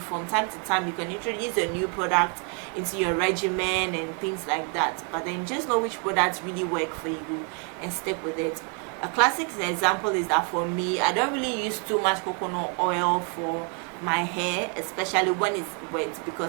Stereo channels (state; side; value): quieter; left; 38.3 dB